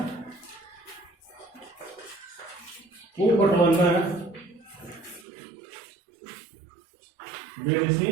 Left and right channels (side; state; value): left; drops out; at 5.2 s